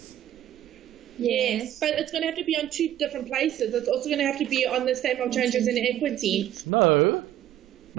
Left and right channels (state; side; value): quieter; left; 12.2 dB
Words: Yes, but it's going to have to be on two different places. It's also going to have to be on the statement of changes in equity. No.